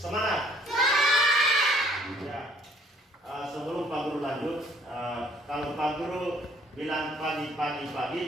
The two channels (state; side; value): normal; both; correlation 0.59